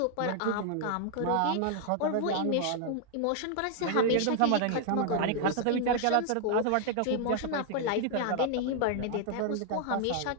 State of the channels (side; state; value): both; different; correlation 0.00